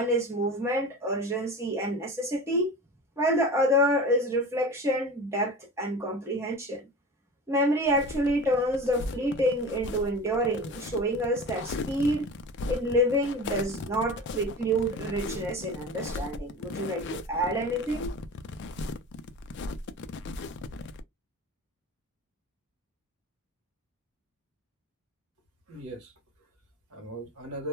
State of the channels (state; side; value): normal; both; correlation 0.33